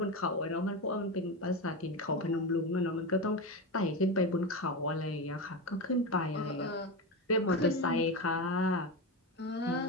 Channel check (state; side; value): normal; both; correlation 0.17